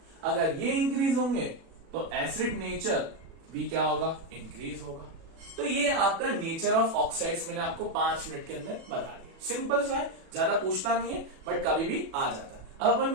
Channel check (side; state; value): left; late; 37 ms